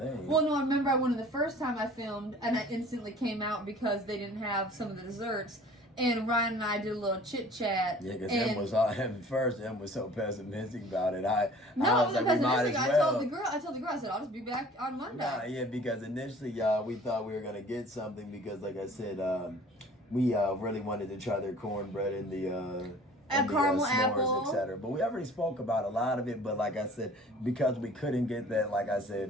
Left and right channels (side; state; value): both; normal; correlation 0.48